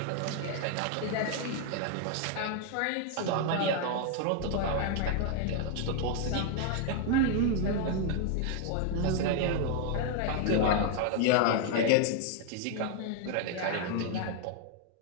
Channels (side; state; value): both; different; correlation 0.00